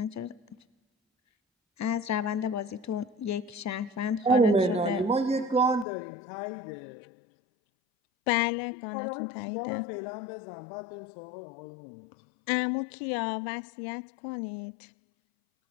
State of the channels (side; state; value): right; drops out; at 5.9 s